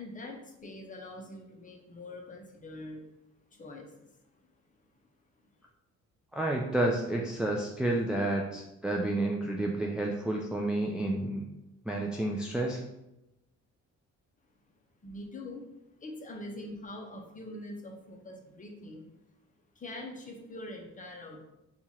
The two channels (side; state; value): both; normal; correlation 0.68